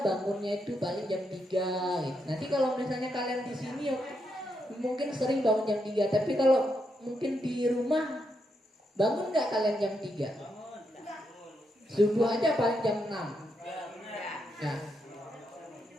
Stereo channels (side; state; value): both; normal; correlation 0.81